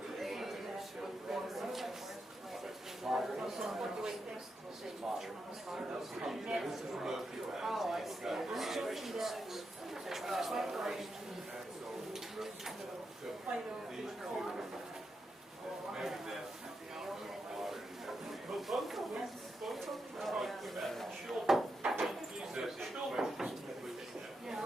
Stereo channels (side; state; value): both; normal; correlation 0.85